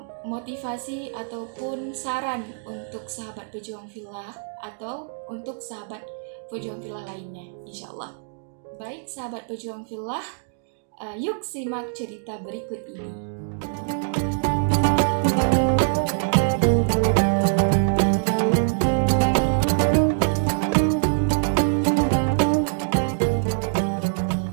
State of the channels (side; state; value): left; silent; digital silence